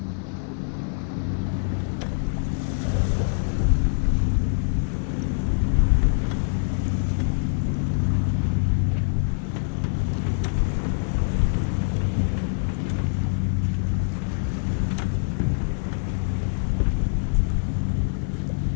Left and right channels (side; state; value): right; silent; digital silence